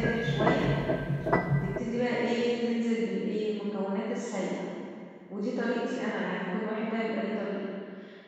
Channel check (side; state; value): both; identical; correlation 1.00